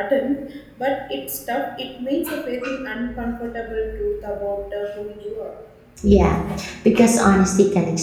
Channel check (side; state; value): both; identical; correlation 1.00